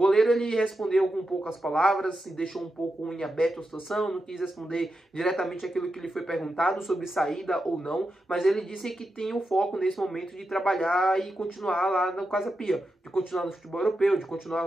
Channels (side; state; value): both; normal; correlation 0.88